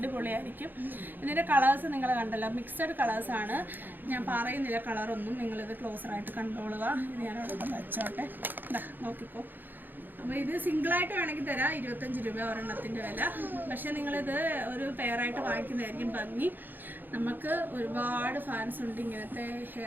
ഇതിൻ്റെ കളേഴ്സ് നിങ്ങൾ കണ്ടല്ലോ, മിക്സഡ് കളേഴ്സാണ്. ഞാൻ പറയുന്നില്ല കളറൊന്നും, നിങ്ങളിത് ക്ലോസറായിട്ട് കണ്ടോളുക. ഇത് ഞാനവിടെ വെച്ചോട്ടെ. നോക്കിക്കോ. അപ്പോൾ ഇത് സിംഗിളായിട്ട് വേണമെങ്കിൽ തരാം 25 രൂപ ഒരെണ്ണത്തിൻ്റെ വില. പക്ഷേ നിങ്ങളിത് ഒരു പെയറായിട്ട് വാങ്ങിക്കുന്നതായിരിക്കും ഭംഗി. നമുക്ക് ഒരുപാട് ഫാൻസ് ഉണ്ട് ഇങ്ങനത്തെ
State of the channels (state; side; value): late; left; 0.090 ms